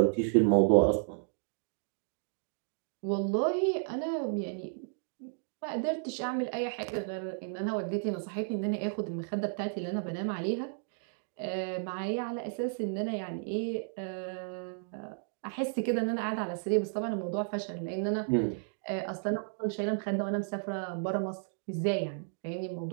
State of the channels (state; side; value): silent; left; digital silence